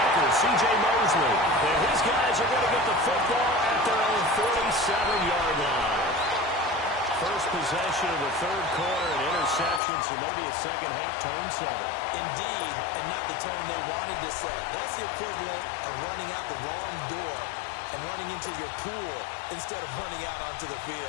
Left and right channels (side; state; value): right; drops out; at 9.8 s